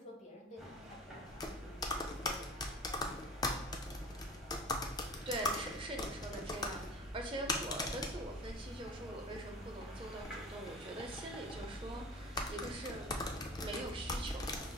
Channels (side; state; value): both; normal; correlation 0.39